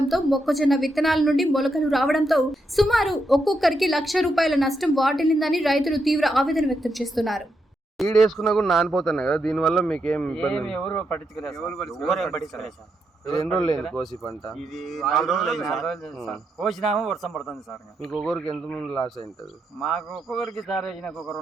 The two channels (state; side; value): normal; both; correlation 0.82